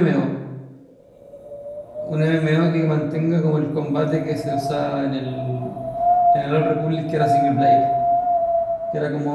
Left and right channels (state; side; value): identical; both; correlation 1.00